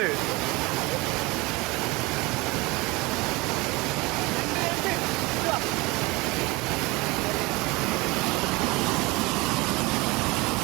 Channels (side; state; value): left; quieter; 23.9 dB